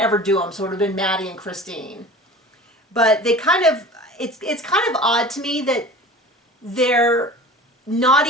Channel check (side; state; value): both; normal; correlation 0.39